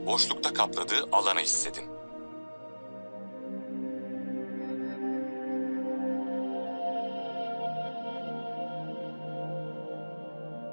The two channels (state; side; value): inverted; both; correlation -1.00